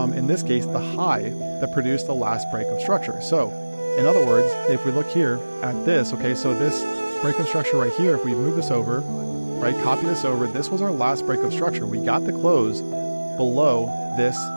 in this case, the high that produced the last breakup structure. So, in other words, if we look here at this, okay, so this breakup structure right here, if we move this over, right, copy this over, this was our last breakup structure. We got the close below this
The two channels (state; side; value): inverted; both; correlation -1.00